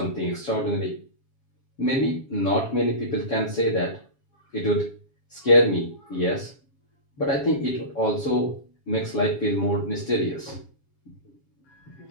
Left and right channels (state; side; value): late; right; 7.3 ms